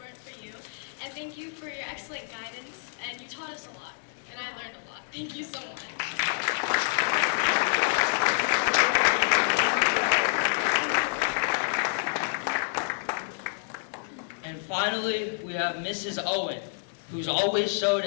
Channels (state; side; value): silent; right; digital silence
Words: for you. And thank you for your excellent guidance. And you taught us a lot. And I learned a lot. Thank you so much. And finally, we have Mrs. Owen, who's always showed